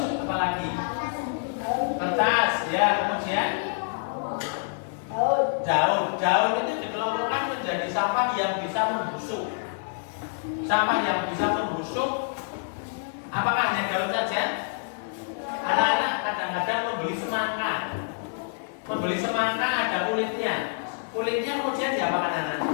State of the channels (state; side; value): silent; right; digital silence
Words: apa lagi? Kertas, ya, kemudian daun. Daun itu dikelompokkan menjadi sampah yang bisa membusuk. Sampah yang bisa membusuk. Apakah hanya daun saja? Anak-anak kadang-kadang membeli semangka. Membeli semangka ada kulitnya. Kulitnya kemudian diapakan anak-anak?